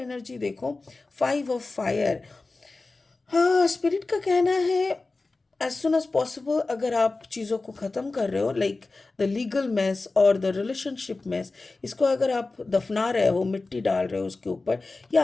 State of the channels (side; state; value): right; quieter; 3.5 dB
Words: देखो, 5 ऑफ फायर। हाँ, स्पिरिट का कहना है एज सुन एज पॉसिबल अगर आप चीज़ों को ख़त्म कर रहे हो, लाइक द लीगल मेस और द रिलेशनशिप मेस, इसको अगर आप दफना रहे हो, मिट्टी डाल रहे हो उसके ऊपर, ये